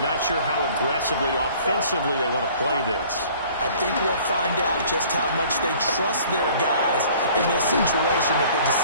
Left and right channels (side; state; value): both; inverted; correlation -0.52